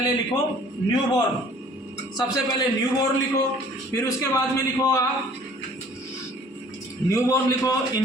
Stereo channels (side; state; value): both; normal; correlation 0.53